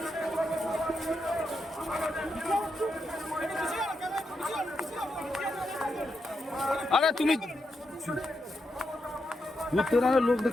আরে তুমি লোক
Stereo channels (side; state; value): both; normal; correlation 0.85